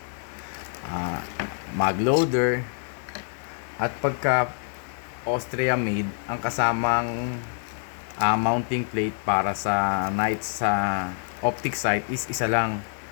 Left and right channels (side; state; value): right; silent; 61 dB below the other